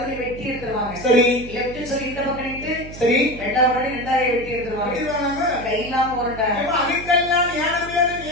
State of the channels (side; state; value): right; noise; hum, 13 dB below the sound